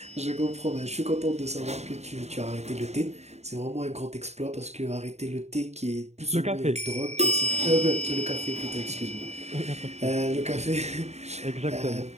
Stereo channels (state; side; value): late; left; 0.32 ms